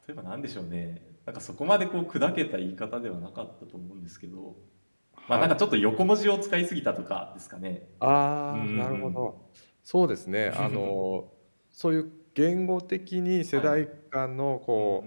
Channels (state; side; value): inverted; both; correlation -1.00